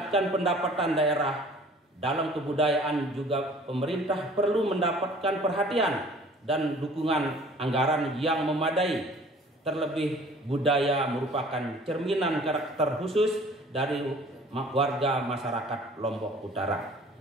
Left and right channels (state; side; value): normal; both; correlation 0.50